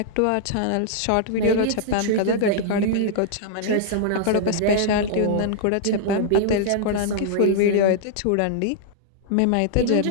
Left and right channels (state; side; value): different; both; correlation -0.01